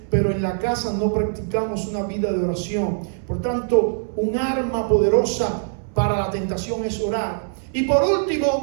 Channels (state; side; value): silent; left; 64 dB below the other